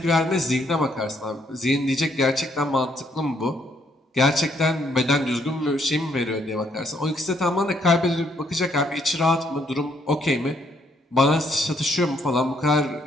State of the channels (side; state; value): both; normal; correlation 0.70